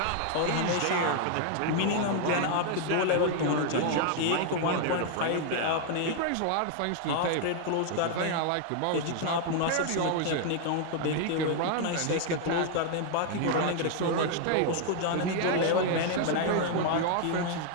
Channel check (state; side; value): different; both; correlation 0.00